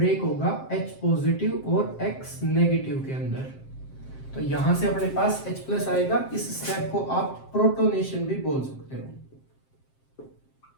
होगा H पॉजिटिव और X नेगेटिव के अंदर। तो यहां से अपने पास H+ आएगा। इस स्टेप को आप प्रोटोनेशन भी बोल सकते हो,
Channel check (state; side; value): late; right; 7.6 ms